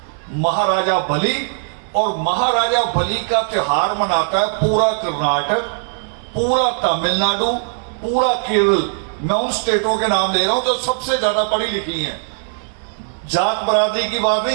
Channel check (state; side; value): silent; left; digital silence